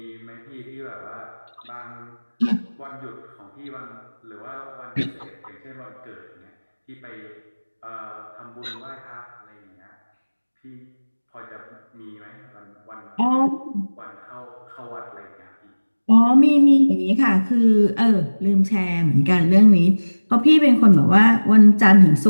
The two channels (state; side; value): inverted; both; correlation -1.00